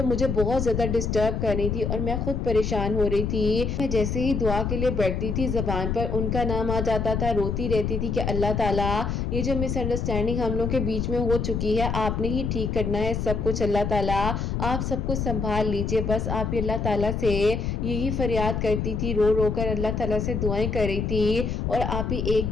मुझे बहुत ज्यादा डिस्टर्ब कर रही थी और मैं खुद परेशान हो रही थी। मैं जैसे ही दुआ के लिए बैठती थी जबान पर उनका नाम आ जाता था, रोती रहती थी कि अल्लाह ताला ये जो मिसअंडरस्टैंडिंग हम लोग के बीच में हो चुकी है आपने ही ठीक करना है सब कुछ, अल्लाह ताला आप सब कुछ संभाल लीजिए। बस आप ही अल्लाह ताला से यही फरियाद करती थी, रो रो कर अल्लाह ताला से दुआएं कर रही थी। और आप ही एक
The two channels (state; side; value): noise; left; rumble, 1 dB below the sound